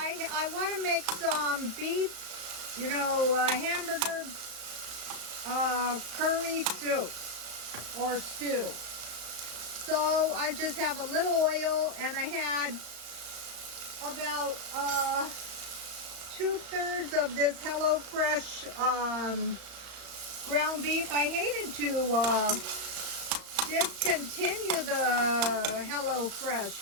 want to make some beef, hamburger curry soup or stew. So I just have a little oil, and I had about 2/3 of this HelloFresh ground beef. I hated to discontinue the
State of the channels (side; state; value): left; late; 35 ms